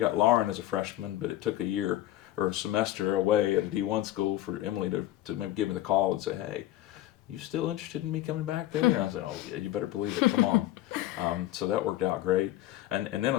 Lauren as a freshman, but it took a year or a semester away at a D1 school for Emily to give me the call and say, hey, you still interested in me coming back there? And I said, oh yeah, you better believe it, come on. So that worked out great. And then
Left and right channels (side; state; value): right; quieter; 14.6 dB